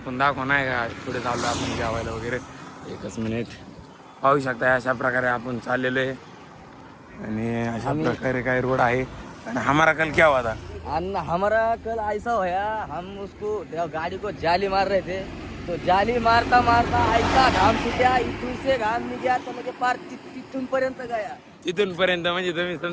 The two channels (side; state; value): both; identical; correlation 1.00